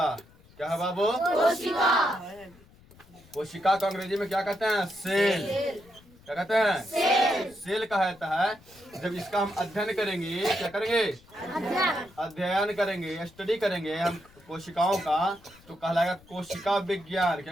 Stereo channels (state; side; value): noise; left; rumble, 26 dB below the sound